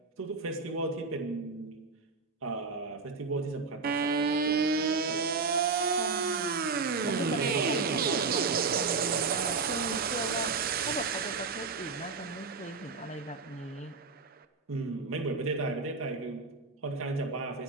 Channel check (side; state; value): left; quieter; 4.5 dB